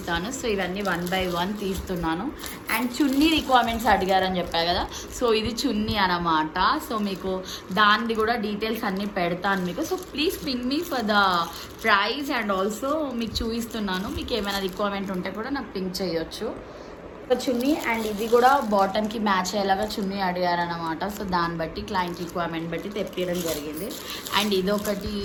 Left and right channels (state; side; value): identical; both; correlation 1.00